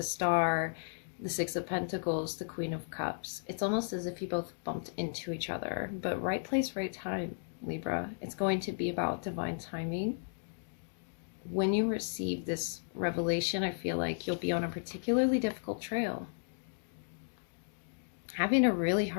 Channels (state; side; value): silent; right; digital silence